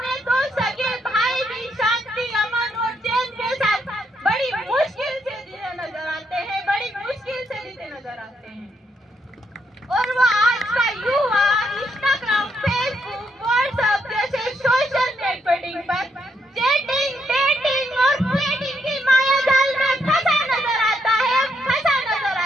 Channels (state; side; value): normal; both; correlation 0.76